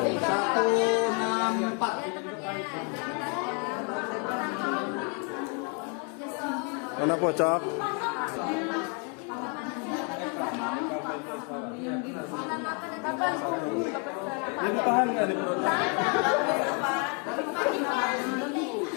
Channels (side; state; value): right; quieter; 37.4 dB